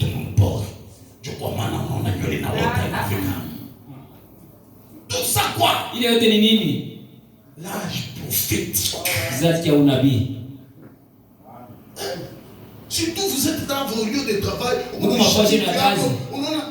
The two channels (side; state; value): both; identical; correlation 1.00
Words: Tout ça quoi? L'âge prophétique. Surtout vous êtes dans vos lieux de travail.